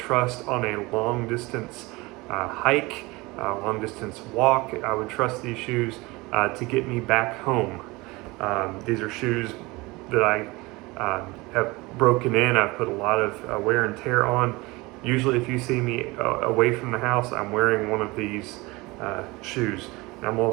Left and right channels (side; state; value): left; quieter; 23.0 dB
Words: on a long distance hike, long distance walk. I would trust these shoes to get me back home. These are shoes that I have broken in. I've put a lot of wear and tear on. Usually if you see me away from the house, I'm wearing one of these shoes. And I'm